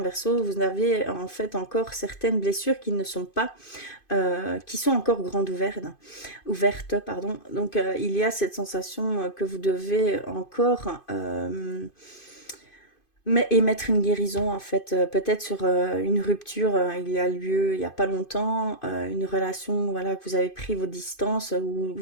Verseaux, vous avez en fait encore certaines blessures qui ne sont pas, qui sont encore grandes ouvertes, pardon. Donc il y a cette sensation que vous devez encore émettre une guérison en fait, peut-être sur une rupture, il y a lieu il n'y a pas longtemps, une relation voilà que vous avez pris vos distances ou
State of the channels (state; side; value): late; right; 2.5 ms